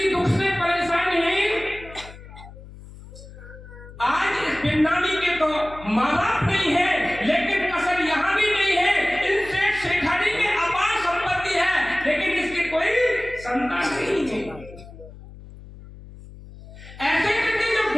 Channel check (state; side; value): noise; left; hum, 17 dB below the sound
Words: दुख से परेशान है। आज इस बिन्नानी के तो माँ बाप नहीं है, लेकिन कसर यहाँ भी नहीं है। इन सेठ शेखानी के अपार संपत्ति है, लेकिन इसकी कोई संतान नहीं है। ऐसे करके जब